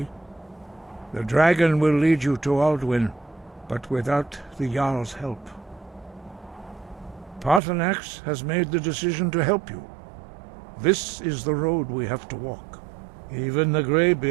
The dragon will lead you to Alduin, but without the Jarl's help. Paarthurnax has made the decision to help you. This is the road we have to walk. Even the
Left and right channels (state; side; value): drops out; left; at 7.6 s